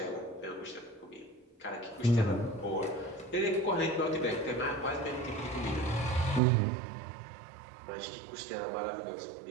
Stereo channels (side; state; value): left; drops out; at 6.4 s